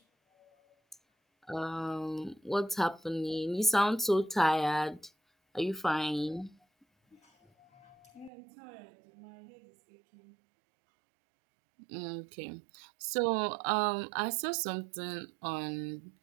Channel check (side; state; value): left; drops out; at 8.3 s